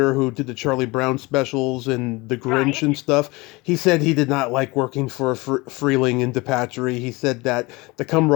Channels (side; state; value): right; quieter; 23.7 dB